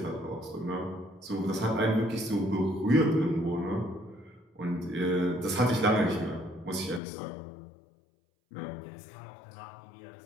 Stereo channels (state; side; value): drops out; right; at 7.0 s